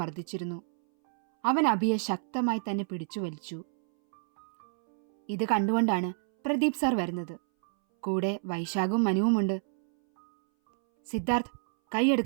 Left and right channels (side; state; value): left; silent; 59 dB below the other